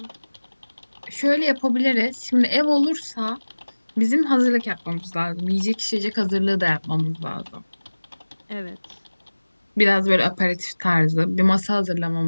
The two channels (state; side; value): inverted; both; correlation -1.00